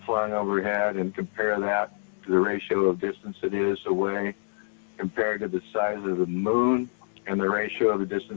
flying overhead and compare that to the ratio of distance it is away compared to the size of the moon and the ratio of the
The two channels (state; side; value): silent; right; digital silence